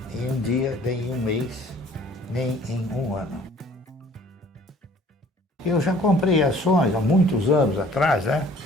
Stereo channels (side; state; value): both; normal; correlation 0.54